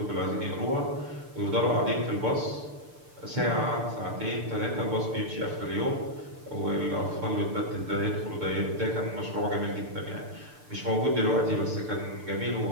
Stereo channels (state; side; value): late; left; 6.8 ms